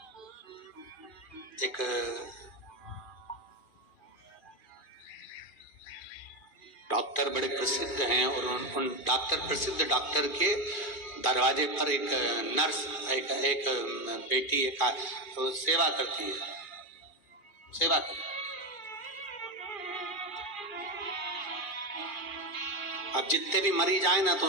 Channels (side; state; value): right; late; 2.4 ms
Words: डॉक्टर बड़े प्रसिद्ध हैं, और उन प्रसिद्ध डॉक्टर के दरवाजे पर एक नर्स, एक बेटी तो सेवा करती है, सेवा करती। अब जितने भी मरीज आए ना तो